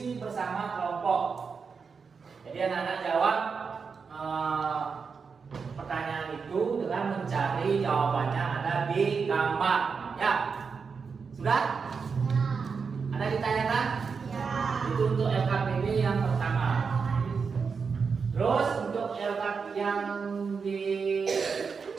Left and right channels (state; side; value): quieter; left; 5.4 dB